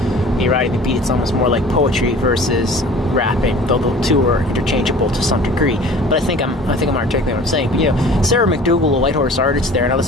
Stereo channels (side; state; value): both; normal; correlation 0.45